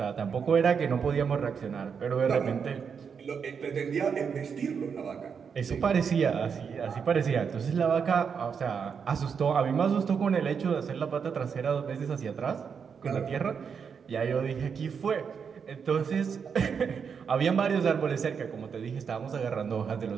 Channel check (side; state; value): left; quieter; 6.5 dB